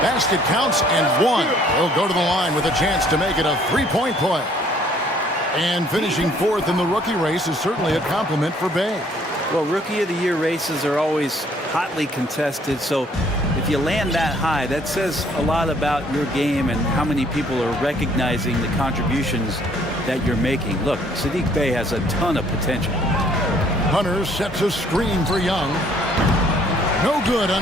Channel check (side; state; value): both; normal; correlation 0.61